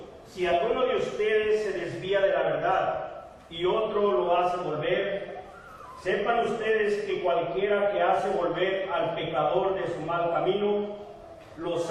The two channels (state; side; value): identical; both; correlation 1.00